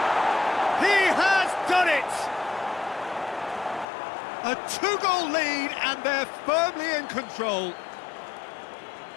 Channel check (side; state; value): right; drops out; at 3.9 s